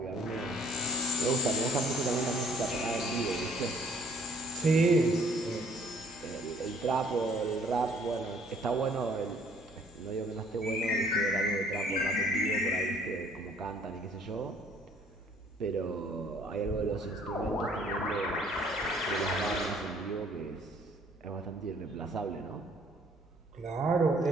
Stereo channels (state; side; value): normal; both; correlation 0.58